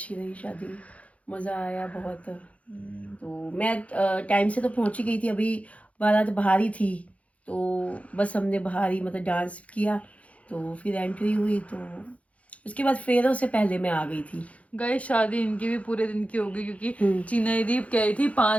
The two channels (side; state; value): right; late; 0.065 ms